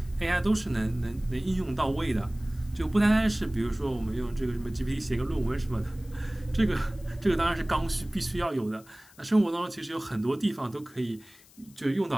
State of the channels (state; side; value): noise; left; hiss, 25 dB below the sound